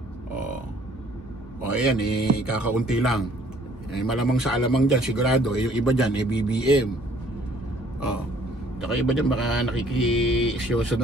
Ayan, kakaunti lang. Malamang sa alamang dyan, sigurado, yung iba dyan, BBM. Tsaka iba dyan, baka nakikiisyoso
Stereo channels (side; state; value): both; normal; correlation 0.59